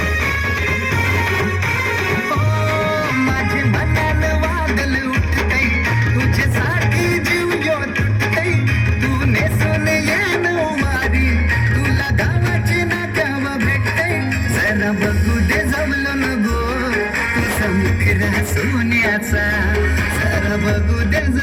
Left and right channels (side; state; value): both; identical; correlation 1.00